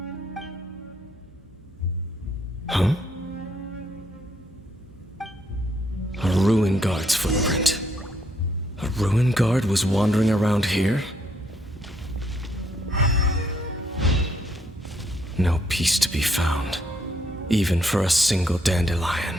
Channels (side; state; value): both; normal; correlation 0.72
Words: Huh? A ruin guard's footprint. A ruin guard was wandering around here? No peace to be found, even for a single